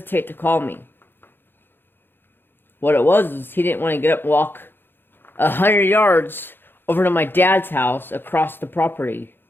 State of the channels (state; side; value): late; right; 0.10 ms